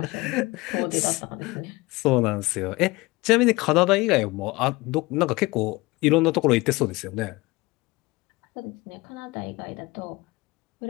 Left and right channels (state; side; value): quieter; right; 22.1 dB